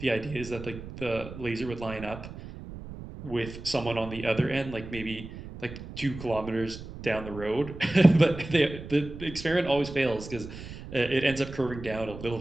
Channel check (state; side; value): noise; right; rumble, 12 dB below the sound